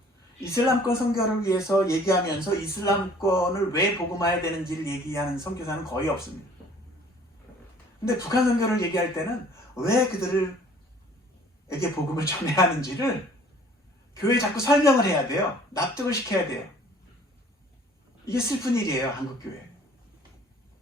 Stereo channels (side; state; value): both; normal; correlation 0.54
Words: 이슬람권 선교를 위해서 얘기하면서 이슬람권을 왜 복음화해야 되는지를 얘기하는 선교사는 거의 없습니다. 근데 북한 선교를 얘기할 때는 왜 그들에게 복음을 전해야 하는지를 교회에 자꾸 설명을 해야 돼요. 납득을 시켜야 돼요. 이게 슬픈 일이에요, 한국교회.